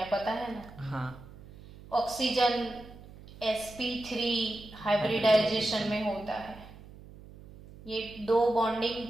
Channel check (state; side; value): noise; right; hum, 19 dB below the sound